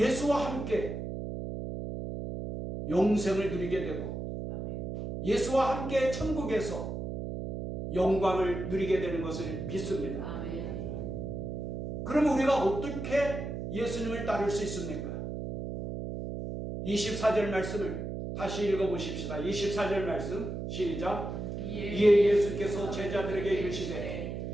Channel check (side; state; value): right; noise; hum, 5 dB below the sound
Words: 함께 영생을 누리게 되고 예수와 함께 천국에서 영광을 누리게 되는 것을 믿습니다. 아멘. 그럼 우리가 어떻게 예수님을 따를 수 있습니까? 24절 말씀을 다시 읽어보십시다. 24절 말씀 시작. 이에 예수께서 제자들에게 이르시되